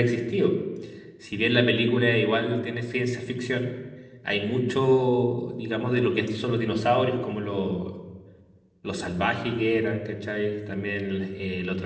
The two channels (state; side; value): identical; both; correlation 1.00